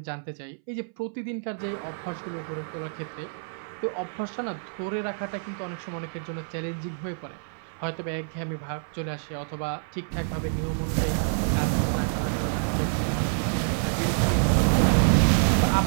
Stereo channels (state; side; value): silent; left; 60 dB below the other